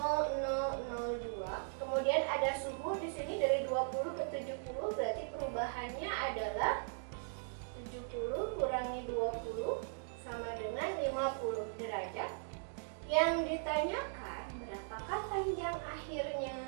Kemudian ada suhu di sini dari 20 ke 70, berarti perubahannya adalah 70 kurangi 20 sama dengan 50 derajat. Yang ditanyakan berapakah panjang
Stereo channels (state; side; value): silent; left; digital silence